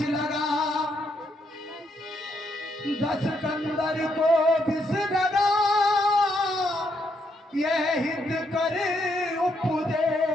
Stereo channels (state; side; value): normal; both; correlation 0.76